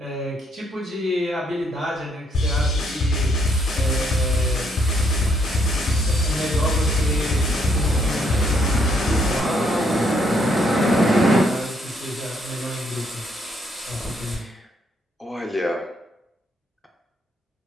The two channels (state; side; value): normal; both; correlation 0.71